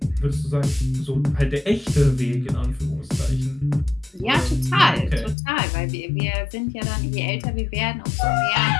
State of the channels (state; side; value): drops out; right; at 5.4 s